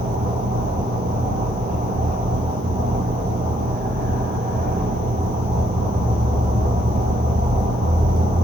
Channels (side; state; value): both; normal; correlation 0.73